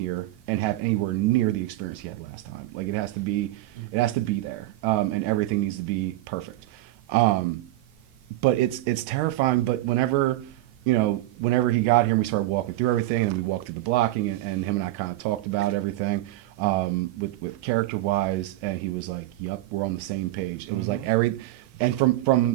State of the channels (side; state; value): left; quieter; 16.4 dB